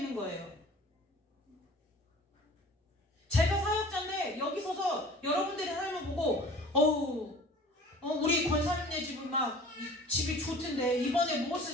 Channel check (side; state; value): both; normal; correlation 0.45